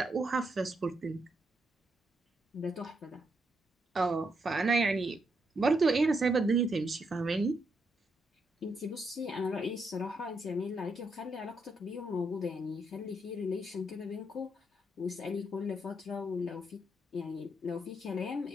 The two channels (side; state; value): both; normal; correlation 0.79